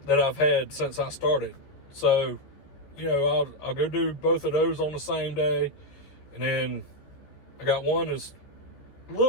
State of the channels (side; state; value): right; late; 14 ms